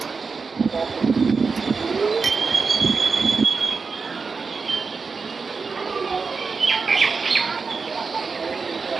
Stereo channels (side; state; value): left; quieter; 4.8 dB